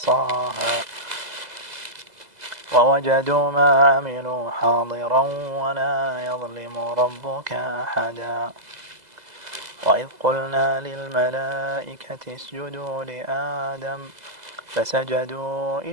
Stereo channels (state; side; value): late; left; 2.0 ms